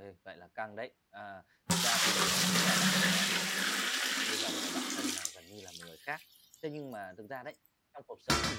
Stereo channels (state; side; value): identical; both; correlation 1.00